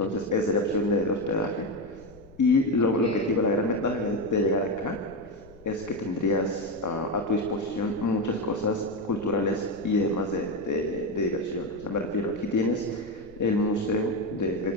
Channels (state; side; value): noise; left; rumble, 23 dB below the sound